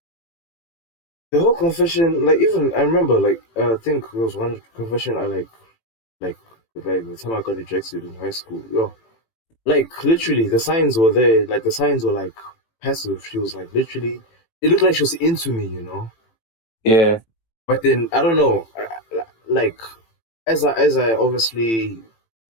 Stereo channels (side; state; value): right; late; 18 ms